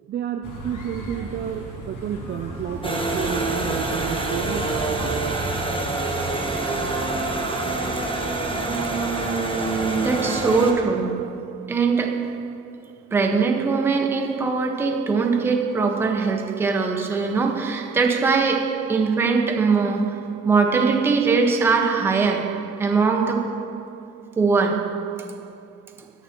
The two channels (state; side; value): quieter; left; 4.1 dB